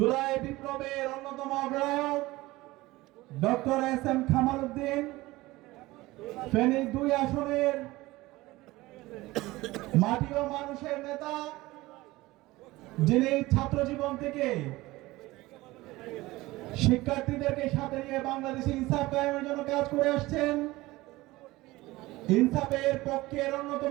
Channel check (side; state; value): left; quieter; 19.4 dB